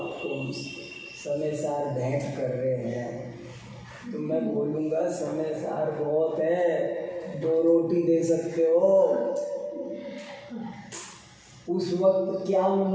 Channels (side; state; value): both; identical; correlation 1.00